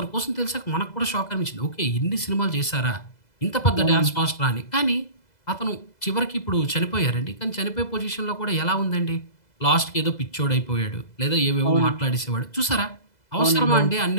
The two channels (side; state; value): right; late; 2.0 ms